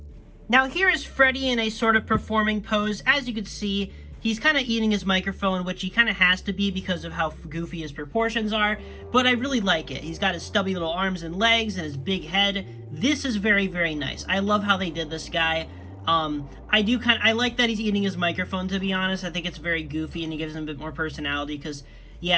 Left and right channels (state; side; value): identical; both; correlation 1.00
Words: Now here is Freddy in a sort of performing pose. As you can see, he's kind of eating his microphone, which he kind of has to be because of how goofy his proportions are, but I really like it. He's got his stubby little arms and legs and his big head. This is very, very nice. I love how they did this guy. I like that he's eating his microphone, to be honest. I think it's very goofy and it gives him a bit more personality because,